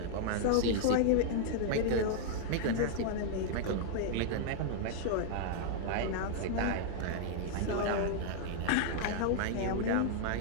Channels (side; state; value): both; different; correlation -0.01